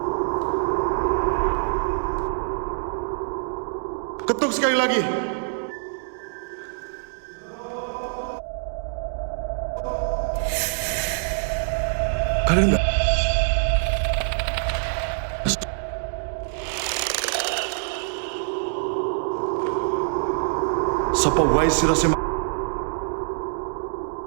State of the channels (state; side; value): silent; left; digital silence